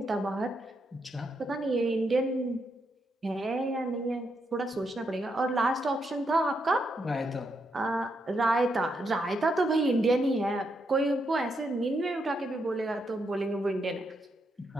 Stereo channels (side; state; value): both; normal; correlation 0.80